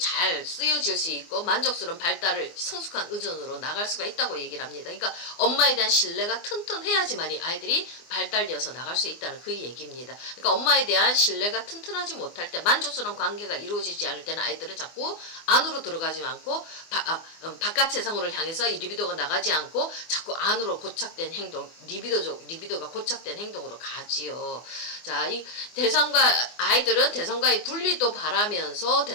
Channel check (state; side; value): late; right; 24 ms